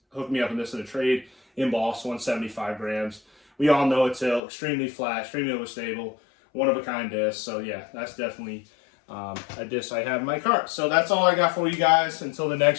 me up in this in a trade. Embossed 175 grams. We all know it's extremely flat, extremely overstable, one-of-a-kind disc. So yeah, that's definitely a disc I have in my cart. So that's all I got for you guys. Until the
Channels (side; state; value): right; drops out; at 4.4 s